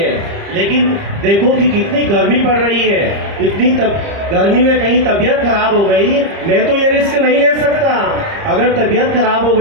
लेकिन देखो कि कितनी गर्मी पड़ रही है। इतनी गर्मी में कहीं तबीयत खराब हो गई, मैं तो ये रिस्क नहीं ले सकता। अगर तबीयत खराब हो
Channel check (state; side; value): late; left; 30 ms